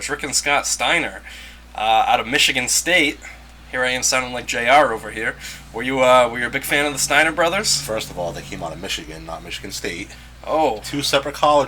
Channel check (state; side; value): identical; both; correlation 1.00